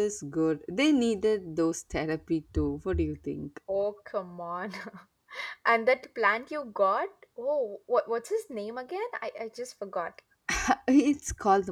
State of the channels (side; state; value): both; identical; correlation 1.00